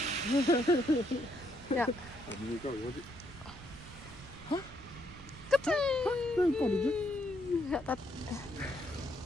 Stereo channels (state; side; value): noise; right; rumble, 16 dB below the sound